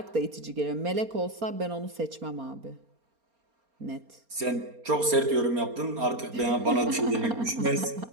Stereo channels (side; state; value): left; late; 4.3 ms